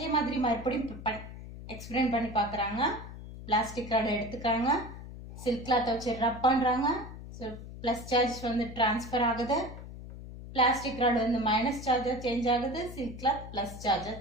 மாதிரி மறுபடியும் எக்ஸ்பிளைன் பண்ணி பார்க்குறாங்க. பிளாஸ்டிக் ராட் எடுத்துக்கிறாங்க, சில்க் கிளாத்தை வச்சு ரப் பண்றாங்க, ஸோ பிளஸ் சார்ஜ் வந்து டிரான்ஸ்ஃபர் ஆகுது, பிளாஸ்டிக் ராட் வந்து மைனஸ் சார்ஜா சேஞ்ச் ஆகுது, சில்க் கிளாத் பிளஸ் சார்ஜா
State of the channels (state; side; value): noise; left; hum, 12 dB below the sound